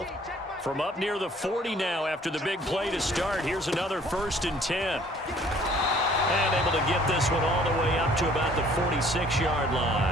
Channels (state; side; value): normal; both; correlation 0.56